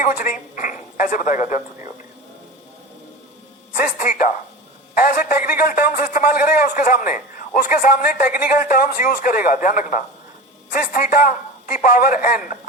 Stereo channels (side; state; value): both; normal; correlation 0.31